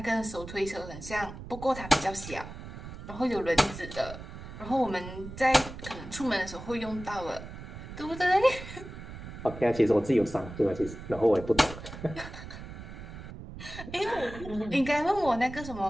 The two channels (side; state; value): right; noise; rumble, 12 dB below the sound